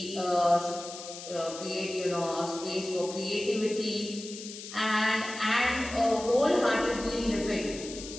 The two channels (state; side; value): noise; left; hiss, 12 dB below the sound